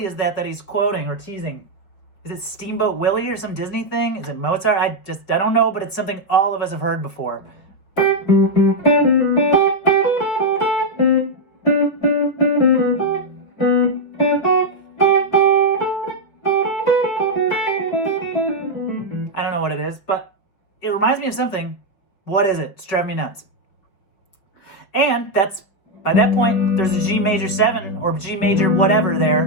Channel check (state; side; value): late; right; 5.5 ms